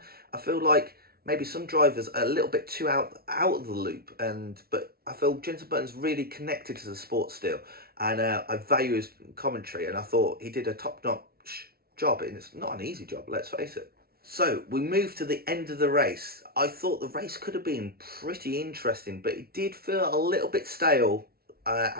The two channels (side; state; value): left; late; 0.44 ms